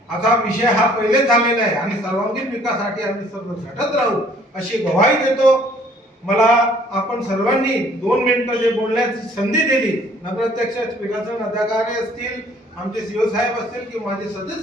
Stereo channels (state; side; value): normal; both; correlation 0.58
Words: असा विषय हा पहिले झालेला आहे आणि सर्वांगीण विकासासाठी आम्ही सर्व झटत राहू, अशी ग्वाही देतो. मला आपण सर्वांनी 2 मिनिटं जे बोलण्याची संधी दिली, नगराध्यक्ष, विकासन अधिकारी असतील, आमचे सीओ साहेब असतील की माझे